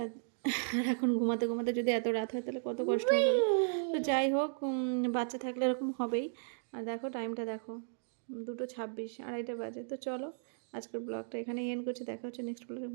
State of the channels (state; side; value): silent; left; digital silence